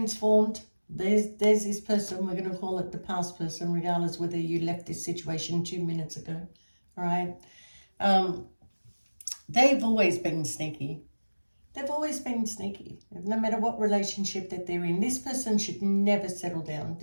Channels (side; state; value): both; inverted; correlation -1.00